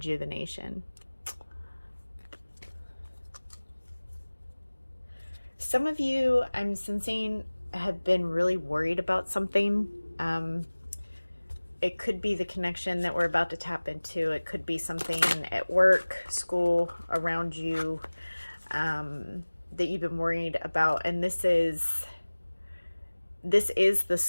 Some of you, I'm sensing, have been really worried about something. It could be the connection that we're about to tap into. It could be something at work, school, around you that you've been worried about. And this is the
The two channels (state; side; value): inverted; both; correlation -1.00